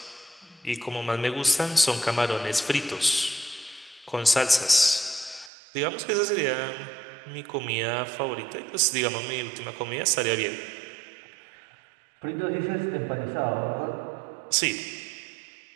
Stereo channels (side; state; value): left; drops out; at 5.5 s